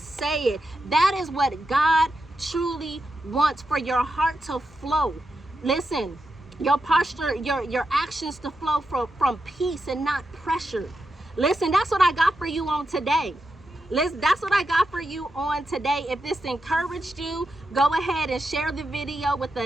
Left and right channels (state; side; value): normal; both; correlation 0.87